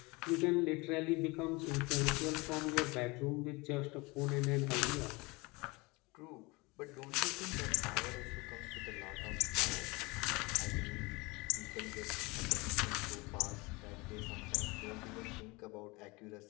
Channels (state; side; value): quieter; right; 25.1 dB